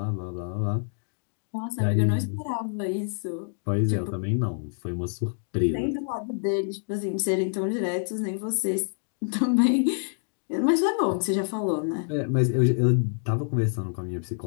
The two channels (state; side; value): silent; right; digital silence